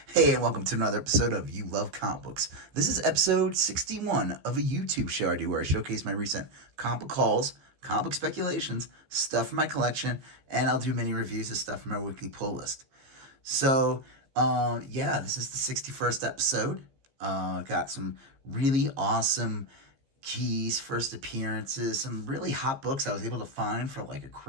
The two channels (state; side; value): late; left; 15 ms